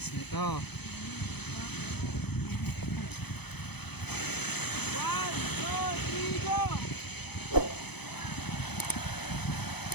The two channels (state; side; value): late; right; 0.98 ms